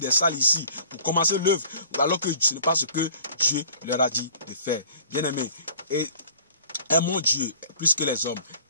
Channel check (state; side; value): inverted; both; correlation -0.50